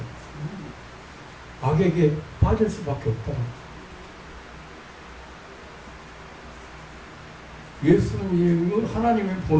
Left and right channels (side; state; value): both; identical; correlation 1.00